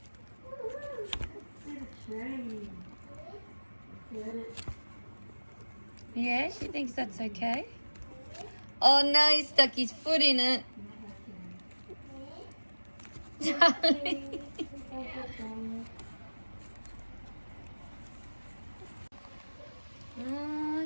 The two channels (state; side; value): inverted; both; correlation -1.00